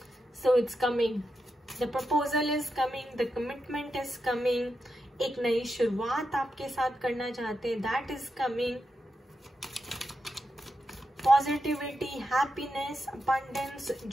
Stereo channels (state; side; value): normal; both; correlation 0.87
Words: So it's coming, the proposal is coming, the commitment is coming. एक नई शुरुआत आपके साथ करना चाहते हैं, that is coming. Positivity, happiness, abundance,